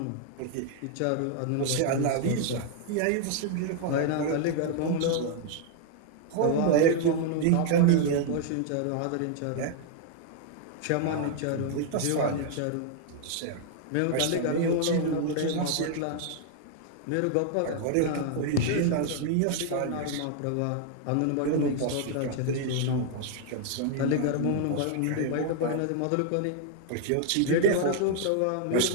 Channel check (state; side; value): different; both; correlation 0.00